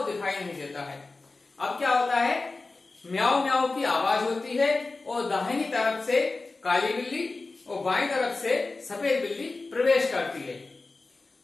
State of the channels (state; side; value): quieter; right; 3.6 dB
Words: दिखाई नहीं देता है। अब क्या होता है? म्याऊ म्याऊ की आवाज होती है और दाहिनी तरफ से काली बिल्ली और बाईं तरफ से सफेद बिल्ली प्रवेश करती है।